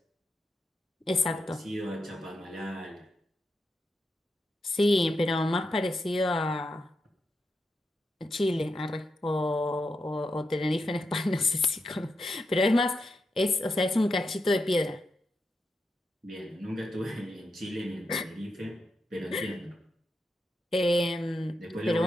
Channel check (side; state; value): both; normal; correlation 0.86